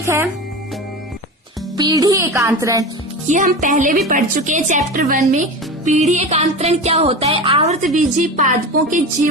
है पीढ़ी एकांतरण। ये हम पहले भी पढ़ चुके हैं चैप्टर 1 में। पीढ़ी एकांतरण क्या होता है? आवर्तबीजी पादपों के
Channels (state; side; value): normal; both; correlation 0.28